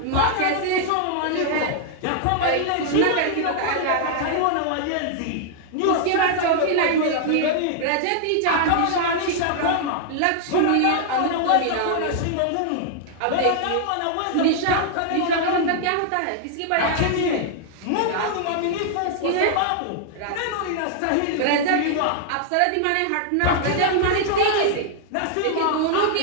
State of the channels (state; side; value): different; both; correlation -0.01